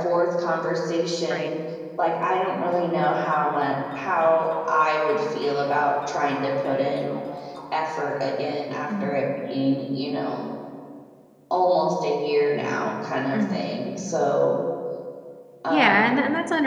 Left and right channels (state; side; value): identical; both; correlation 1.00